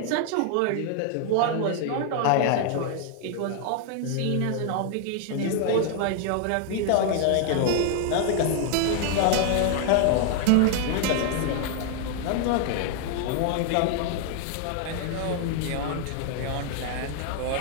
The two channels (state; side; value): different; both; correlation 0.00